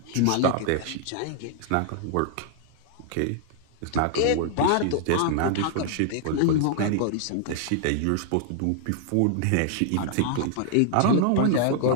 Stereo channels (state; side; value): different; both; correlation -0.01